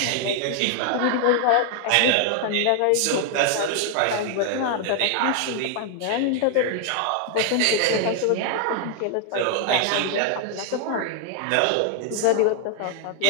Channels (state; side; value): different; both; correlation 0.00